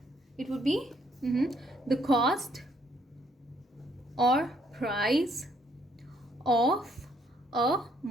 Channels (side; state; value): both; normal; correlation 0.69